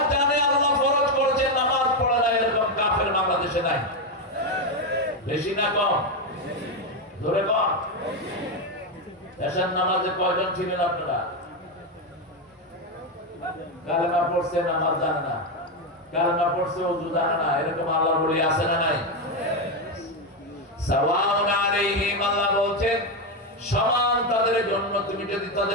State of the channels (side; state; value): both; normal; correlation 0.08